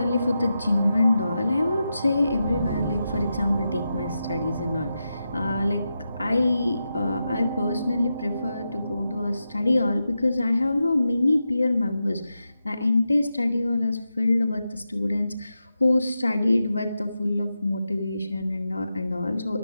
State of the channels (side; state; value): both; inverted; correlation -0.89